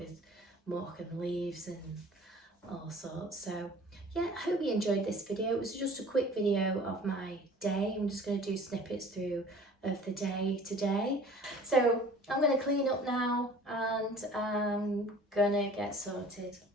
muck and leaves and all sorts. So yeah, I hope you enjoyed this video. It was just a quick video of my day. I'm just going to do snippets through of the day today. So I'm going to clean up now and I'm going to get sorted,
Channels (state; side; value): normal; both; correlation 0.47